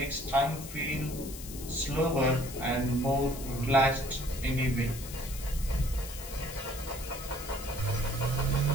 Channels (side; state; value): left; noise; hiss, 12 dB below the sound